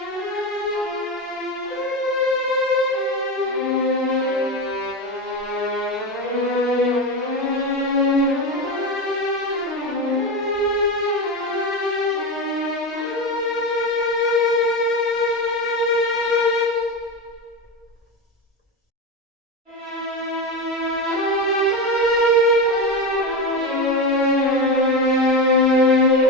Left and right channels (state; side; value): normal; both; correlation 0.18